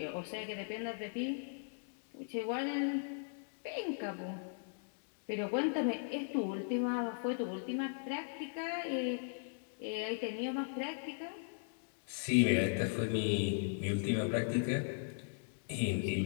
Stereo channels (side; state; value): right; silent; digital silence